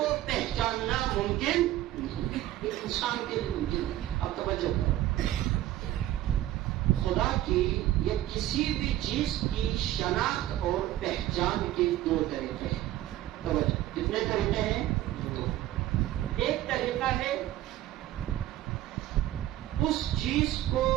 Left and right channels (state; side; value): quieter; left; 14.3 dB